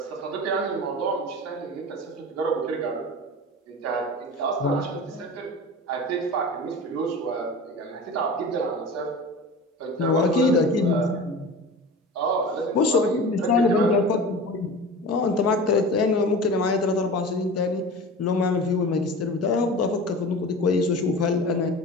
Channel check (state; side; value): normal; both; correlation 0.34